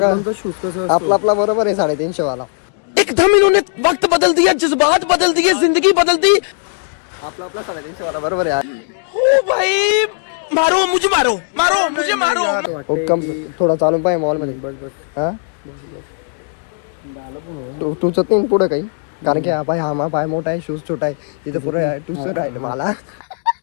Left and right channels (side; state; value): right; silent; digital silence